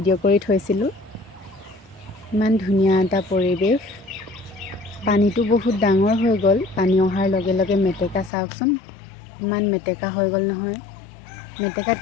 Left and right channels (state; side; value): drops out; right; at 8.3 s